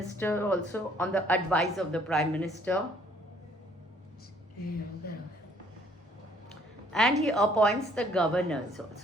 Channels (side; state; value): both; normal; correlation 0.62